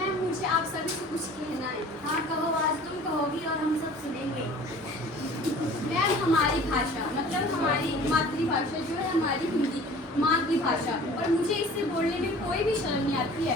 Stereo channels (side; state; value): both; normal; correlation 0.46